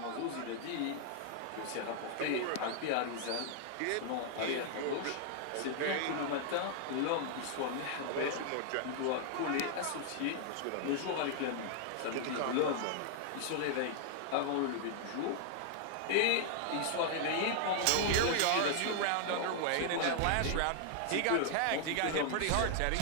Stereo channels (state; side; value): different; both; correlation 0.00